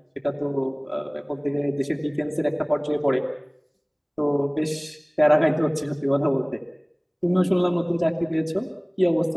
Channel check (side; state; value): both; identical; correlation 1.00